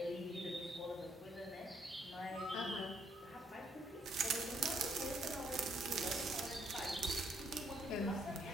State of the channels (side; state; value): both; normal; correlation 0.70